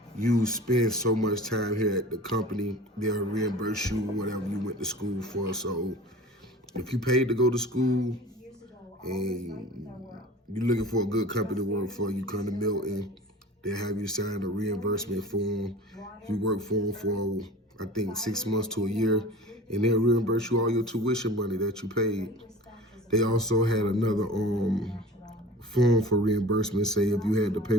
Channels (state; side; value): normal; both; correlation 0.40